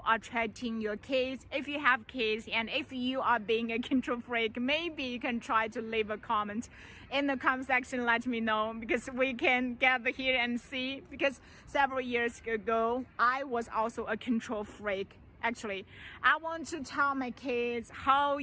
treating your kids. If you have kids and if you are being a control freak, maybe you can try to leave a comment in the comment section. Let me know, because we can gather here and see. Because several years ago, I was also a control freak. Actually, I want to tell my kids how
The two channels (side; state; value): both; identical; correlation 1.00